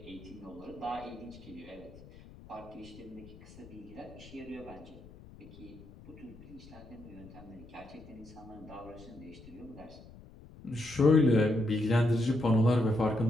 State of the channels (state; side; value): noise; left; rumble, 19 dB below the sound